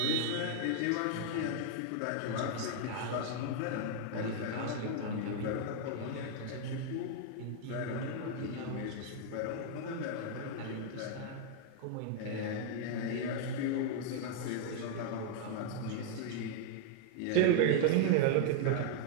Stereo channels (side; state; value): both; different; correlation -0.01